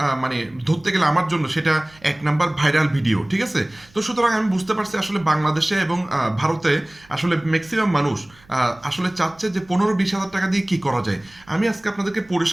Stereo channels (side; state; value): right; noise; hum, 28 dB below the sound